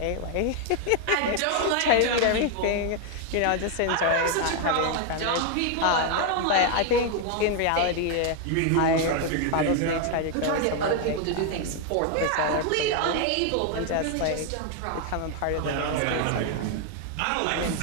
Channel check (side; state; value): both; different; correlation 0.00